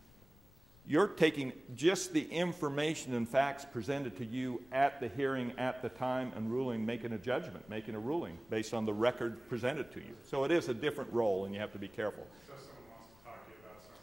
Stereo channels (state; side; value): noise; left; rumble, 25 dB below the sound